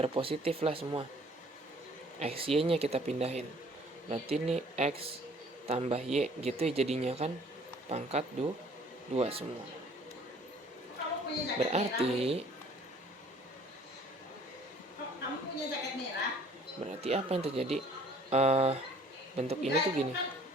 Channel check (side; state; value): both; normal; correlation 0.56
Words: positif lah semua. X y nya kita pindahin, berarti ini x tambah y gitu ya jadinya kan, pangkat 2 semua. Berarti Kamu punya jaket merah? berarti apa yang terjadi, bentuk ini tuh gini,